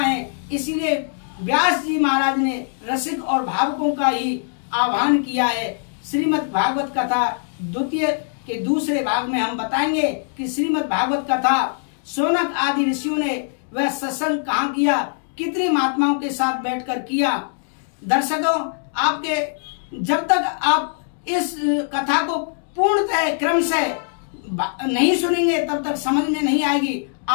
इसीलिए व्यास जी महाराज ने रसिक और भावुकों का ही आह्वान किया है। श्रीमद् भागवत कथा द्वितीय के दूसरे भाग में हम बताएंगे कि श्रीमद् भागवत कथा शौनक आदि ऋषियों ने वह सत्संग कहाँ किया, कितने महात्माओं के साथ बैठकर किया। दर्शकों, आपके जब तक आप इस कथा को पूर्णतः क्रमशः नहीं सुनेंगे तब तक समझ में नहीं आएगी।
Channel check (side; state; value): right; silent; digital silence